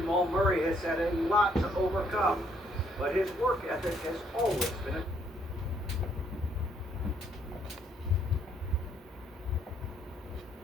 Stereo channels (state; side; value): normal; both; correlation 0.69